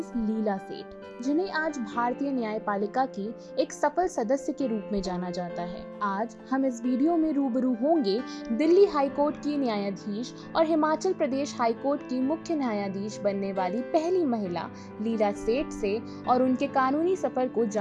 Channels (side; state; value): both; identical; correlation 1.00